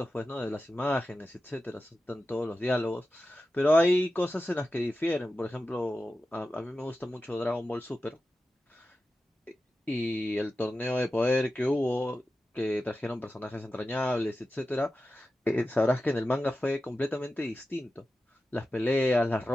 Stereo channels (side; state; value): both; normal; correlation 0.93